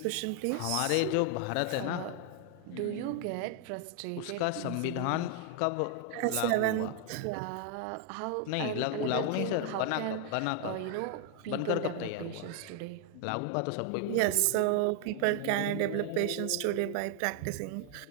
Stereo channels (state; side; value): different; both; correlation 0.00